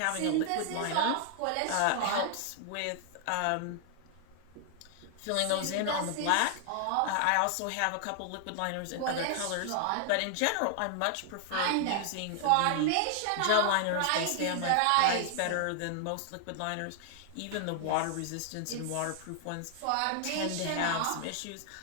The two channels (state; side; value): different; both; correlation 0.00